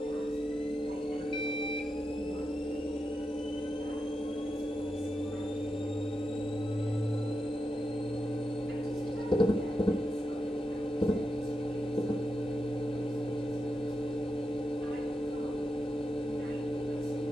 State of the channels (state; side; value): normal; both; correlation 0.87